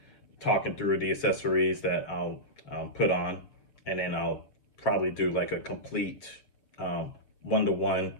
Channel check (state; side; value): late; right; 7.0 ms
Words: talking through the accessories that I'll put on, and then I'll probably do like a complete one-to-one